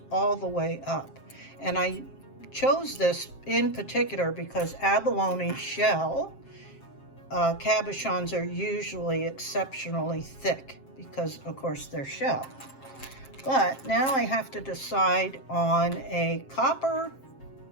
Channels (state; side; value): late; right; 7.5 ms